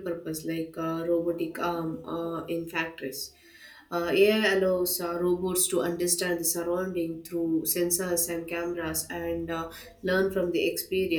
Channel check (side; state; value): both; identical; correlation 1.00